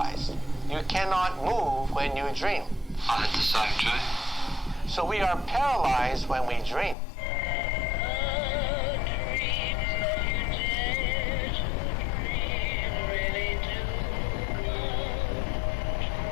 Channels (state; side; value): drops out; right; at 7.0 s